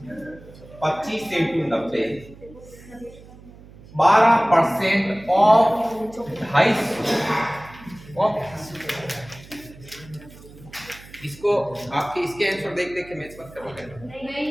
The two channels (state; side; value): noise; right; hum, 20 dB below the sound